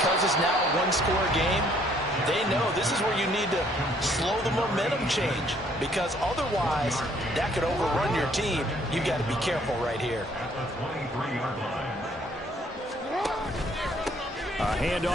it's now a one-score game, they know this is where you need to slow the momentum change. Because otherwise, that could overrun your team. You've got to be careful right here. At the 23-yard line. A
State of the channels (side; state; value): both; normal; correlation 0.63